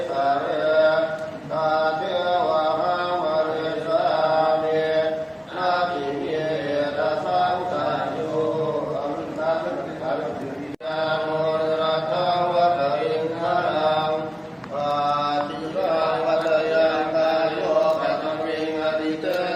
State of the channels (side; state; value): both; identical; correlation 1.00